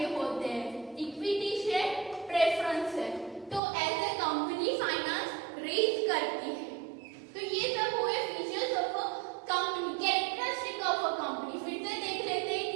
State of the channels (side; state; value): left; drops out; at 3.6 s